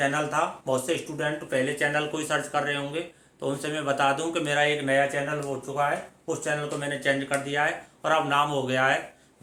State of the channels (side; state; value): both; identical; correlation 1.00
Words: था बहुत से स्टूडेंट पहले चैनल को ही सर्च कर रहे होंगे, तो उनसे मैं बता दूं कि मेरा एक नया चैनल हो चुका है, उस चैनल को मैंने चेंज कर दिया है और अब नाम हो गया है